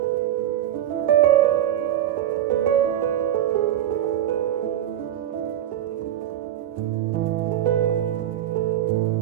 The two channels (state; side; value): quieter; left; 11.5 dB